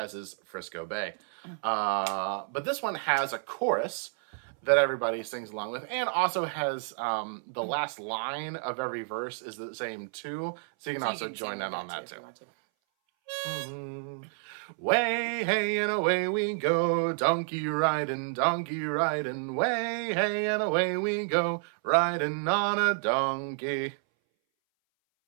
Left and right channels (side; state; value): left; silent; 58 dB below the other